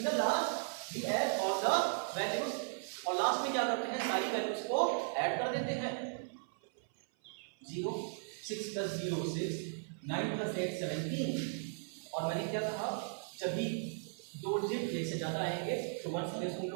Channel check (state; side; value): silent; left; 53 dB below the other